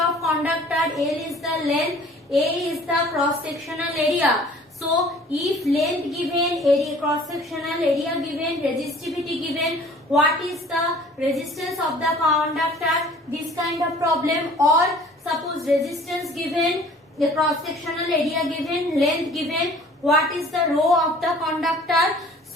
conductor, L is the length, A is the cross-sectional area. So if length given, area cross-sectional area given, resistivity given, what is the resistance of the conductor? This kind of problem. Or suppose resistance given, the cross-sectional area given, length given, what is the rho of the conductor?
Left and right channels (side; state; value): both; normal; correlation 0.50